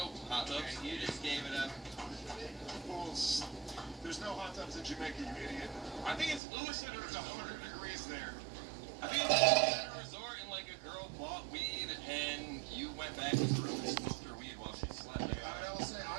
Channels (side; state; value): left; drops out; at 6.4 s